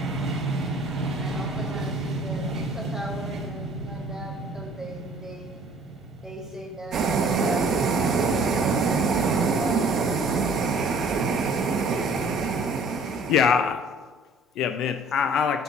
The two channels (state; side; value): normal; both; correlation 0.53